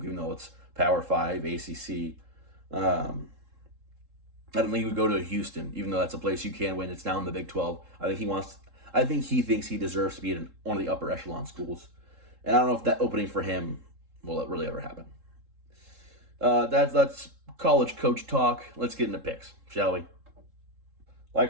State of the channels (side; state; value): left; late; 3.7 ms